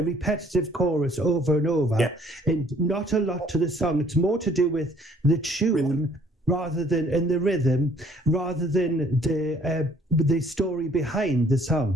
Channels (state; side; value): normal; both; correlation 0.59